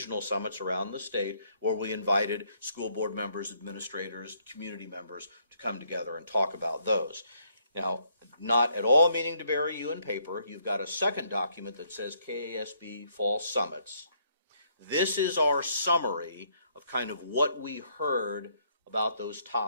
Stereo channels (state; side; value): inverted; both; correlation -0.69